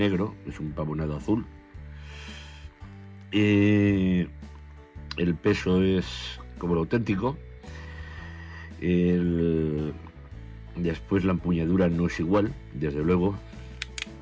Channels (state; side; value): identical; both; correlation 1.00